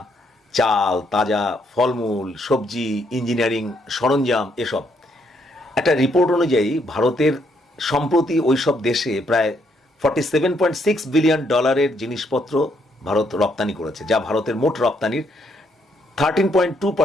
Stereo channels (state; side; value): normal; both; correlation 0.73